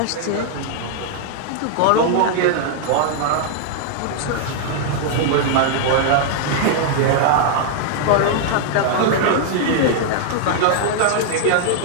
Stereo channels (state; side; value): different; both; correlation -0.01